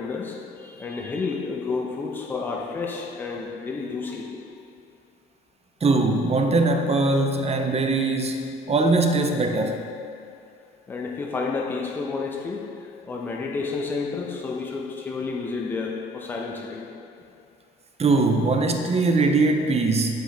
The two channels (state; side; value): normal; both; correlation 0.57